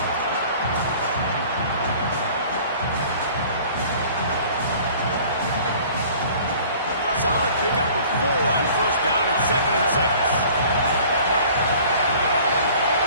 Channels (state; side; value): inverted; both; correlation -0.49